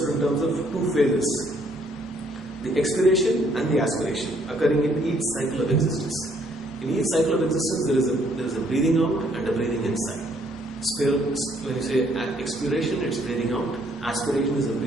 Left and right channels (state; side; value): normal; both; correlation 0.66